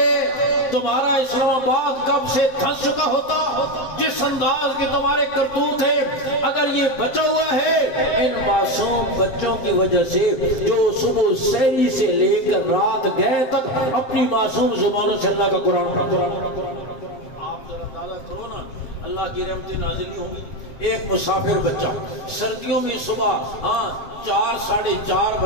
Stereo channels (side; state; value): right; late; 7.6 ms